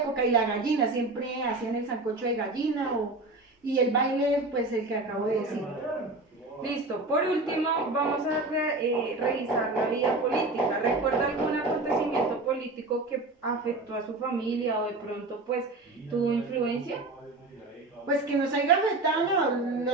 Y la gallina, siempre hacían el sancocho de gallina y el baile, pues el que acabo de decir. Listo, por último vamos a revisar la vida política. ¿Recuerda algún acontecimiento político que afectó a su familia o de pronto pues tuvo influencia? Pues que nos haya afectado, no,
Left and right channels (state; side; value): quieter; left; 3.1 dB